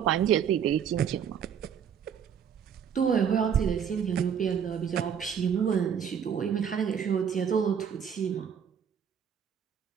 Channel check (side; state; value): left; quieter; 7.9 dB